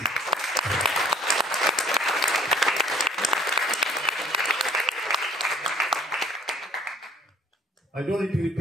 I don't need to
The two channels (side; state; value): both; normal; correlation 0.55